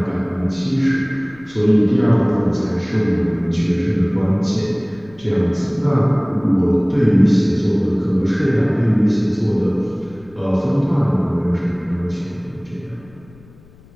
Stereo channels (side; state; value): left; noise; rumble, 25 dB below the sound